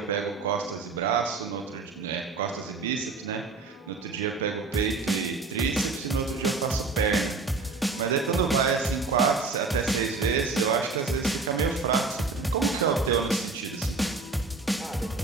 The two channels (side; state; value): left; quieter; 4.0 dB